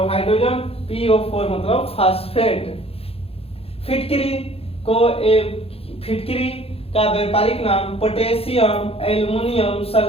हाइड्रोजन, PO4 मतलब फास्फेट। फिटकरी को फिटकरी का व्यापारिक नाम पोटेशियम एल्युमिनियम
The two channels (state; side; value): late; right; 0.28 ms